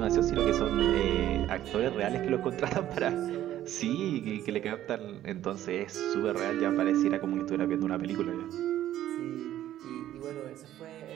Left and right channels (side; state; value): left; quieter; 12.7 dB